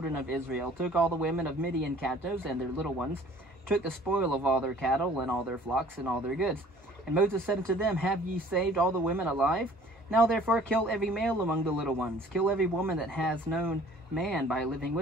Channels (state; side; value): normal; both; correlation 0.52